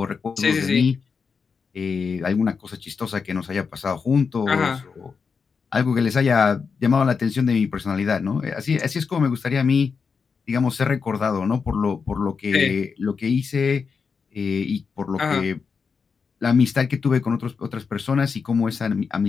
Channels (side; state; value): right; quieter; 5.5 dB